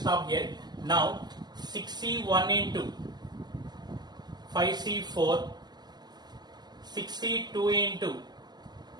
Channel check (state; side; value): late; left; 0.20 ms